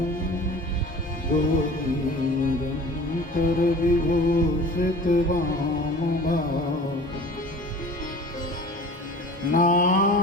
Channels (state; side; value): normal; both; correlation 0.42